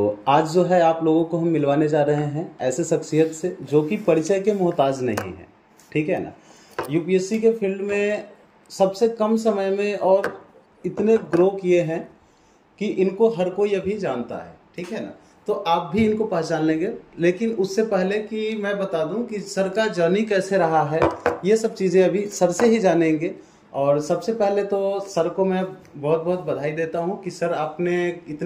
आज जो है आप लोगों को हम मिलवाने जा रहे हैं ऐसे शख्सियत से जो कि परिचय के मोहताज नहीं है, ठीक है ना। यूपीएससी के फील्ड में सबसे कम समय में और इतने ग्रो किए हैं कि इनको हर कोई अभी जानता है, ठीक है ना। तो आप भी इनको पहचान लेंगे, लेकिन उससे पहले कि मैं बता दूं कि सर का जर्नी कैसे रहा है, ये सब चीज़ें अभी सर से ही जानेंगे। और सबसे पहले तो सर को मैं बहुत बहुत बधाई देता हूं कि सर आपने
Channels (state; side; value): identical; both; correlation 1.00